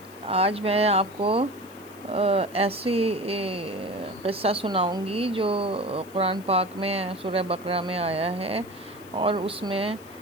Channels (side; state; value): left; noise; hiss, 23 dB below the sound